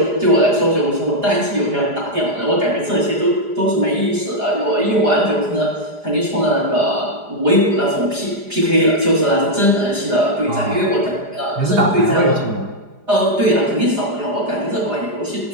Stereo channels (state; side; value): late; left; 4.9 ms